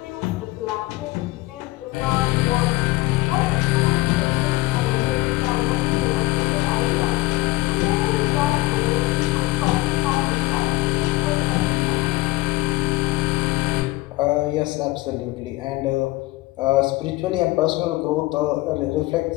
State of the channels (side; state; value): right; quieter; 19.4 dB